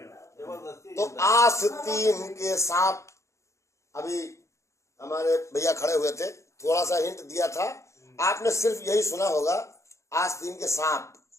तो आस्तीन के सांप, अभी हमारे भैया खड़े हुए थे, थोड़ा सा हिंट दिया था, आपने सिर्फ यही सुना होगा आस्तीन के सांप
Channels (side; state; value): right; late; 0.14 ms